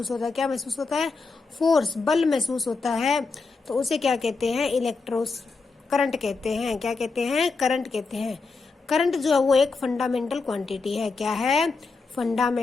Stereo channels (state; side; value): quieter; right; 4.2 dB